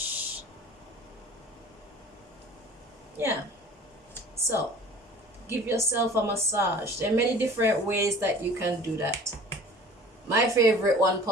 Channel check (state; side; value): normal; both; correlation 0.45